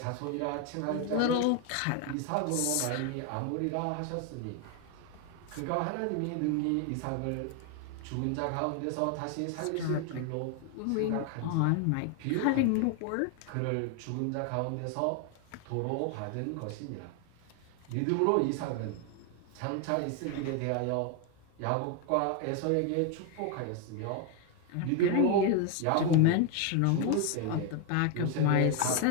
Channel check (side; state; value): both; different; correlation 0.01